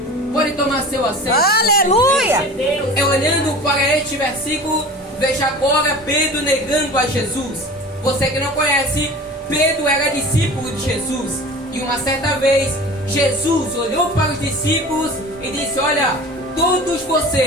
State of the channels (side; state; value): both; normal; correlation 0.38